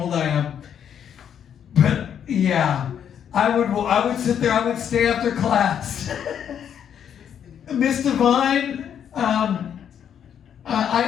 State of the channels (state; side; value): quieter; right; 8.8 dB